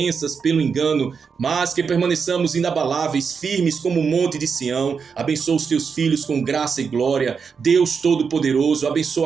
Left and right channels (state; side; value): quieter; left; 5.9 dB